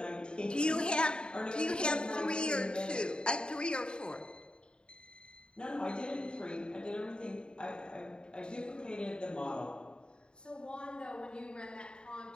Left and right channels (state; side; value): late; right; 0.051 ms